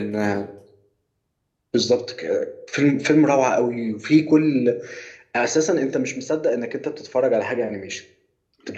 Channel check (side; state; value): both; identical; correlation 1.00